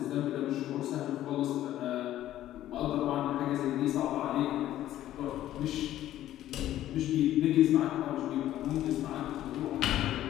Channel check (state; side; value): quieter; right; 13.1 dB